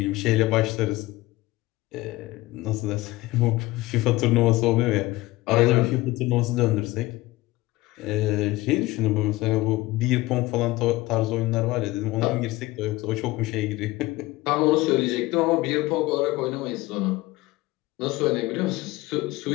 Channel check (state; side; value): quieter; right; 19.2 dB